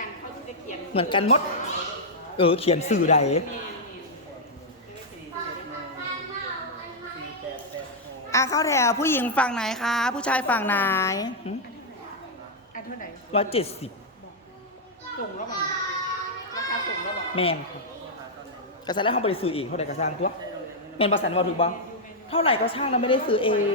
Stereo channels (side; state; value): both; normal; correlation -0.04